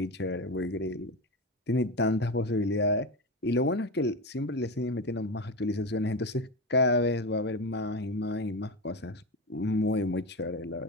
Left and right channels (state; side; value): normal; both; correlation 0.20